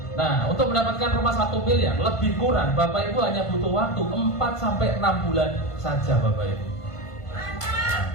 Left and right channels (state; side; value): late; right; 1.5 ms